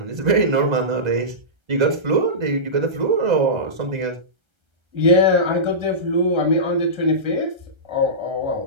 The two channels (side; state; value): left; late; 1.3 ms